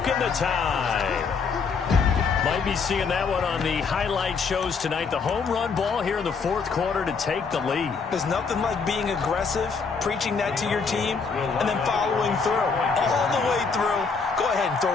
the tie. Might be seeing that one on the highlight shows tonight. The home run ball here in the fourth quarter to take the lead. There's nothing like being aggressive, preaching that to your team, and then following through. All the way through. Go ahead and throw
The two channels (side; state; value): right; quieter; 5.1 dB